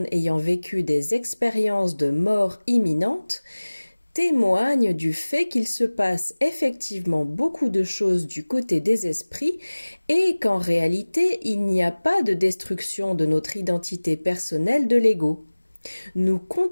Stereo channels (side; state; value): both; inverted; correlation -1.00